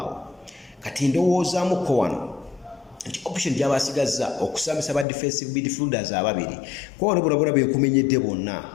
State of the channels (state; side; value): drops out; right; at 5.1 s